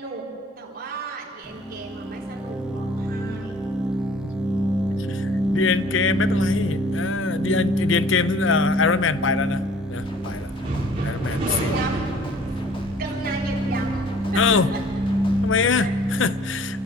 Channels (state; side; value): normal; both; correlation 0.53